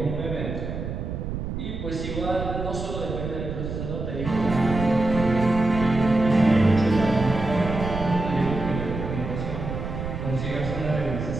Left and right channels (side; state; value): right; noise; rumble, 5 dB below the sound